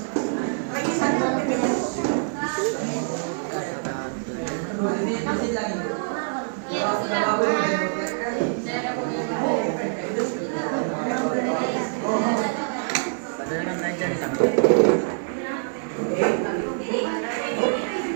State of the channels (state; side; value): silent; left; 62 dB below the other